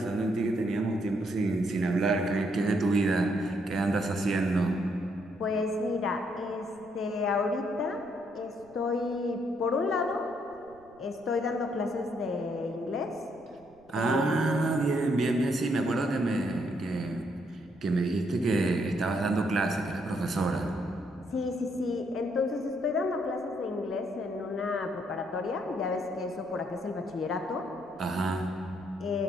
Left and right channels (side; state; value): right; noise; rumble, 29 dB below the sound